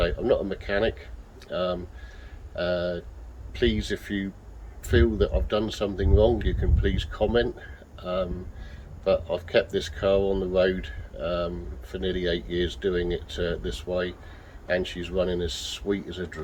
I'm not a mechanic. Please, if you feel that I've done something wrong, you can please comment. But I've kept this car on the road for nearly 8 years doing it this way, and she's running as sweet as a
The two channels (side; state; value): both; identical; correlation 1.00